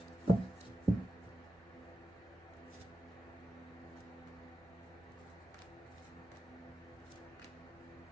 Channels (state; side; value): normal; both; correlation 0.91